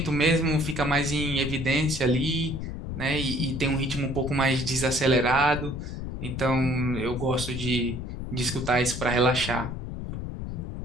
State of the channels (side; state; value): left; noise; rumble, 6 dB below the sound